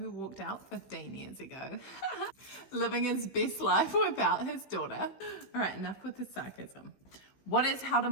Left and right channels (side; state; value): right; late; 16 ms